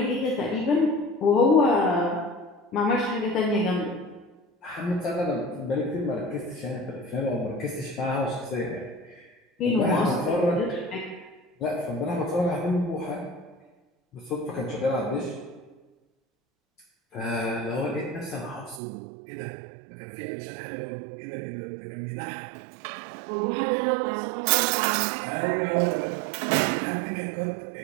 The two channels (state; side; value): drops out; left; at 18.8 s